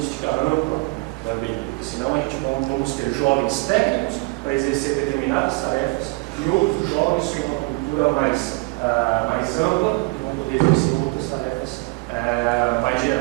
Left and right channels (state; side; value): quieter; left; 26.3 dB